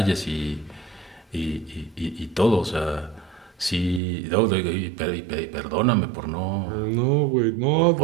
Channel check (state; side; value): drops out; left; at 4.0 s